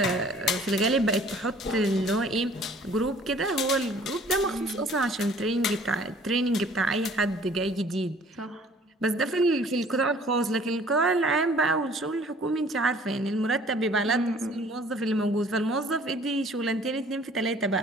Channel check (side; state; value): both; normal; correlation 0.53